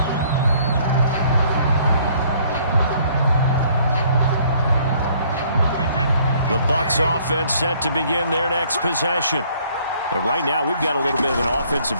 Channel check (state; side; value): inverted; both; correlation -0.61